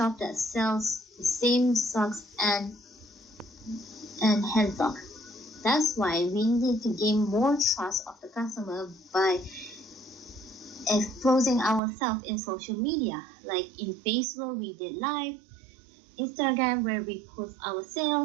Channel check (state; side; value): drops out; left; at 11.8 s